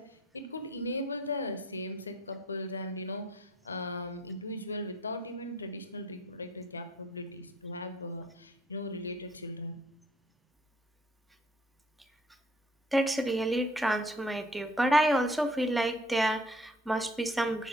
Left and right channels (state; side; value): normal; both; correlation 0.58